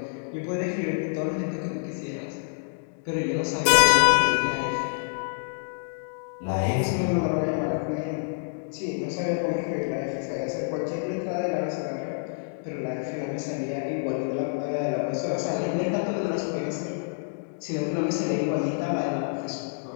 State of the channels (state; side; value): silent; right; digital silence